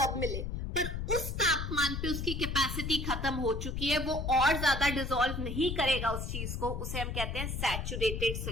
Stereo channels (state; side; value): noise; left; rumble, 4 dB below the sound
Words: मिले, पर उस तापमान पे उसकी कैपेसिटी खत्म हो चुकी है, वो और ज्यादा डिसॉल्व नहीं करेगा उस चीज को, उसे हम कहते हैं सैचुरेटेड